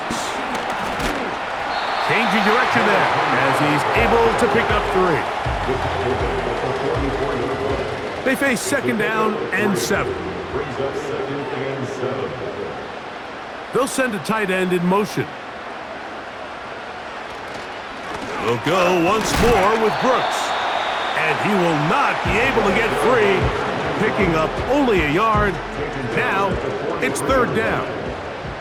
Changing direction there as he's able to pick up 3. They face 2nd down and 7. They'll send a tight end in motion. We'll go once more with Brooks. And he will not be able to get free, picking up only a yard. Now it's 3rd down.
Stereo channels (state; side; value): identical; both; correlation 1.00